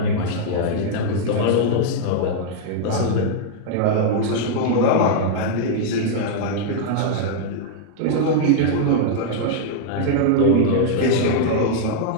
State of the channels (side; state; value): both; different; correlation -0.01